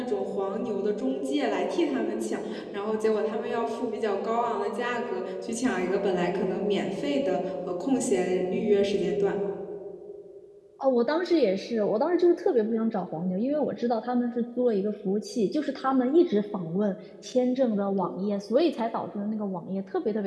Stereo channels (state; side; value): identical; both; correlation 1.00